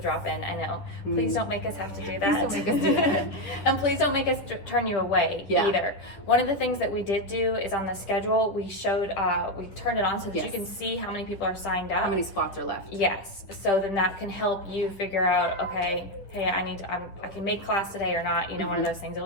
I know. Please don't make us have to do that. Please don't make us do that. And please don't make us turn you away Yeah. either. One of the things that we did do is on the schedule, we turned it on so that you Yes. can see how many people are signed up. How many spots are left? Yes. So then that can help you figure out, okay, hey, I can make class today or not. One of those things.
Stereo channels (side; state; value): right; late; 10 ms